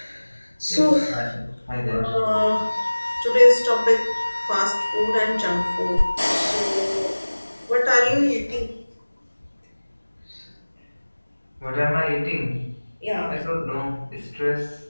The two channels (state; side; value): inverted; both; correlation -1.00